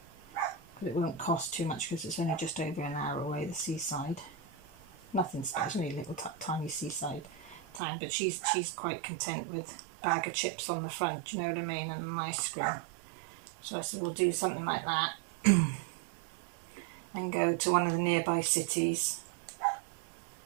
because it won't cost too much because it's only just over an hour away, the seaside. Nothing special, only a little tiny seaside town, but she's quite content with a bag of chips on the front, do you know what I mean, and an ice cream. So I said we'll do something like that and go to one of the nearby cities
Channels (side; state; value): left; drops out; at 7.8 s